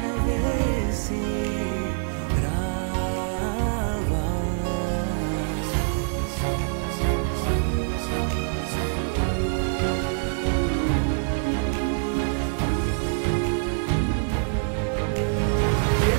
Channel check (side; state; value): left; silent; 62 dB below the other